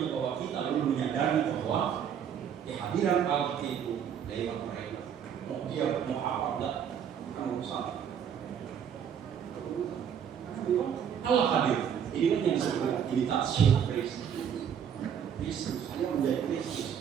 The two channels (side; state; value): left; quieter; 8.3 dB